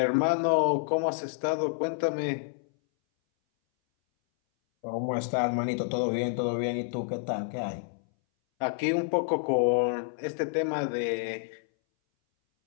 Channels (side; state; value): right; silent; 59 dB below the other